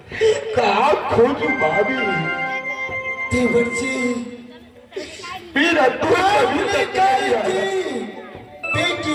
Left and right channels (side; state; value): both; identical; correlation 1.00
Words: कहाँ खोजूं भाभी। देवर जी मेरा आपने कही थी बेटी